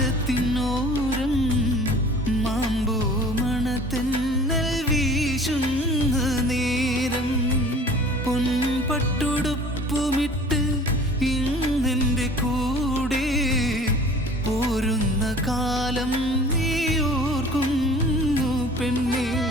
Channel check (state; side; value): normal; both; correlation 0.47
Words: മാമ്പൂ മണത്തെന്നൽ വീശുന്ന നേരം പൊൻപട്ടുടുപ്പുമിട്ട് ഇന്നെൻ്റെ കൂടെ പോരുന്ന കാലം നീ ഓർക്കുന്നു പെണ്ണേ.